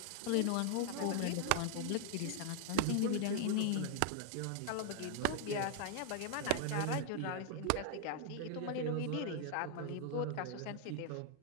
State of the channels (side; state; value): both; different; correlation 0.00